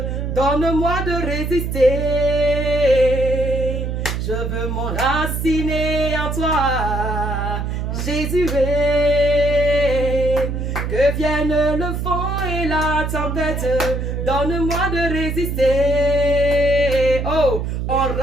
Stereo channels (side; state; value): right; noise; hum, 2 dB below the sound